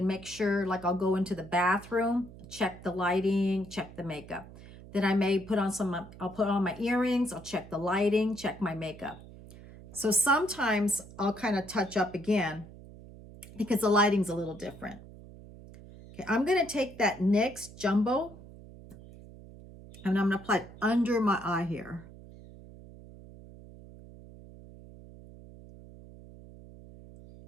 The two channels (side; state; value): right; noise; hum, 18 dB below the sound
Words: make sure, like I'll go into the bathroom, check the lighting, check the makeup. Then I may put on I'll put on my earrings, I'll check the lighting, check my makeup. So sometimes I'll kind of touch up again because the lighting's a little different. Okay, I'm gonna take that NYX Jumbo and I'm gonna apply it under my eye here.